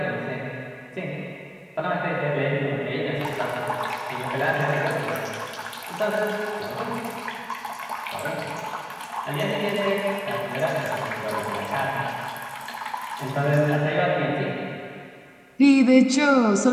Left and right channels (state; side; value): identical; both; correlation 1.00